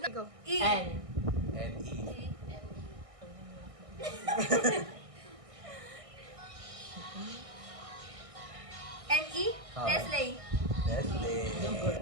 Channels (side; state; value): left; late; 1.6 ms